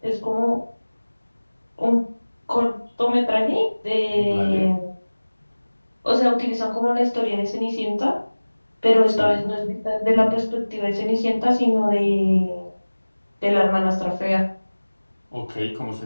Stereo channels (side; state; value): both; inverted; correlation -1.00